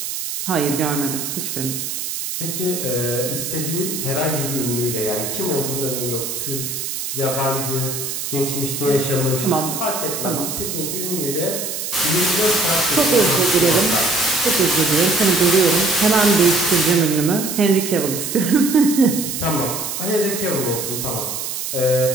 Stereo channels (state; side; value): noise; right; hiss, 5 dB below the sound